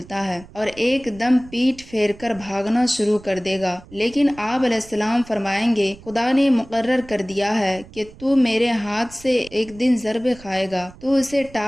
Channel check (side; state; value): right; noise; rumble, 20 dB below the sound